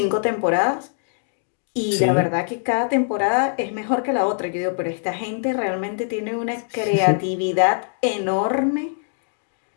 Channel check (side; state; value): right; silent; digital silence